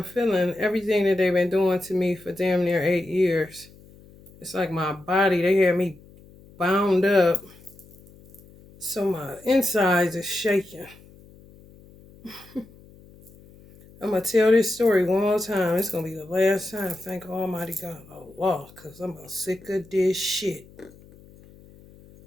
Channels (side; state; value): left; noise; hum, 24 dB below the sound